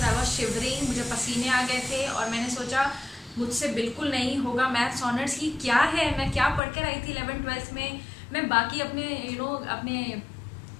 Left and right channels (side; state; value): right; drops out; at 6.6 s